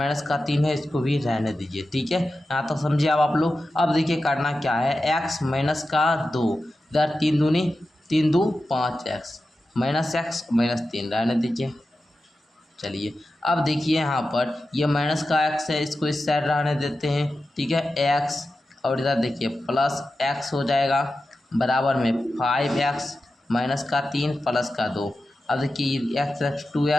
का 3 है, इसको भी रहने दीजिए, ठीक है। यहाँ तो समझिए अब आप लोग। अब देखिए करना क्या है, x माइनस का 2, इधर 3 दूनी 3 2 5x -x -3 रहने दीजिए। चलिए अब देखिए यहाँ पर ये माइनस का x है, इसको इस साइड रहने देते हैं, ठीक है, x, और इधर देखिए प्लस x हो जाएगा, बराबर में 5x -3 प्लस का 2। अब देखिए x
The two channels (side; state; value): both; normal; correlation 0.92